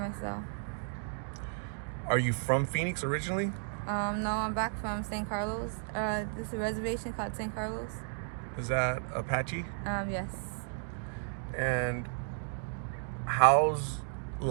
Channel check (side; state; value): left; silent; digital silence